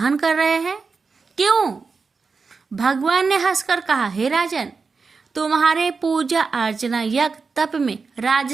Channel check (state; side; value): quieter; left; 4.7 dB